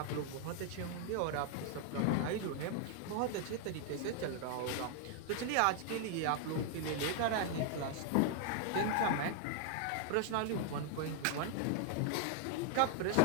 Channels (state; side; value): different; both; correlation 0.00